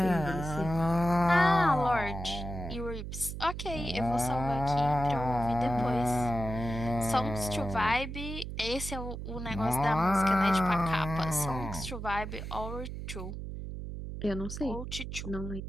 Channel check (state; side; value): noise; right; hum, 7 dB below the sound